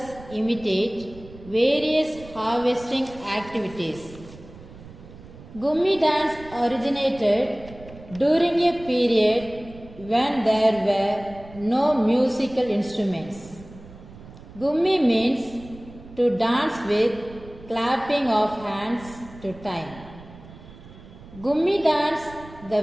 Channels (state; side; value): noise; right; rumble, 18 dB below the sound